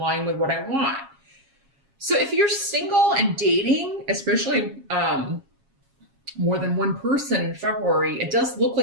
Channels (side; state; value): left; late; 7.3 ms